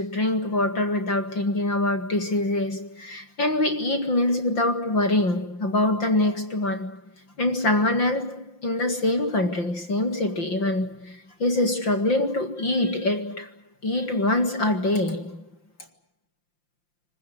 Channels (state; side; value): late; right; 5.8 ms